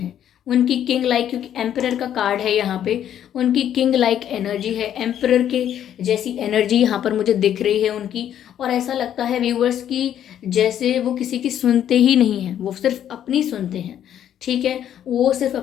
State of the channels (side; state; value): right; quieter; 10.3 dB